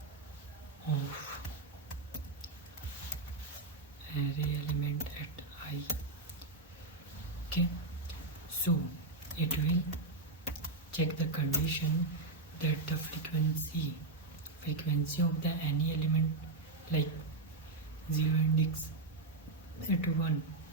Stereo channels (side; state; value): left; quieter; 3.3 dB